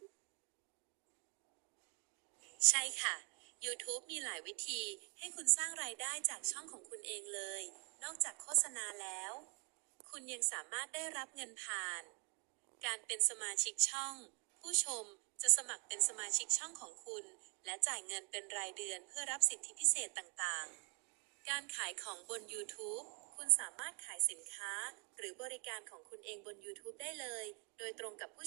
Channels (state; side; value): quieter; left; 35.0 dB